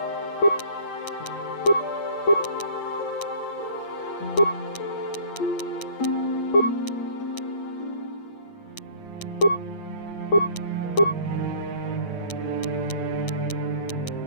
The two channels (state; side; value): late; right; 8.6 ms